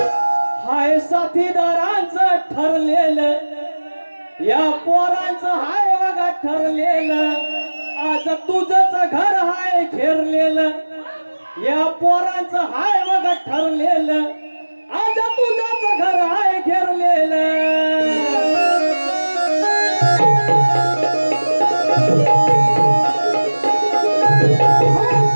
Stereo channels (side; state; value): both; inverted; correlation -1.00